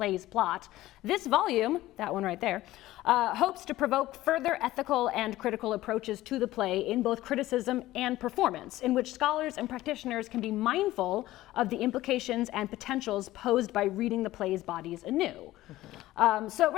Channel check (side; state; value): right; quieter; 16.1 dB